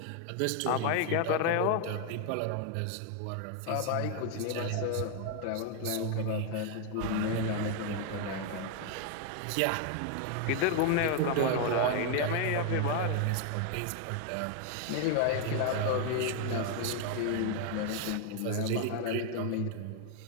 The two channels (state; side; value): different; both; correlation 0.00